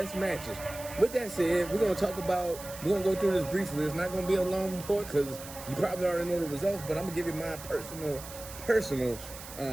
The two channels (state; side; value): noise; right; hiss, 14 dB below the sound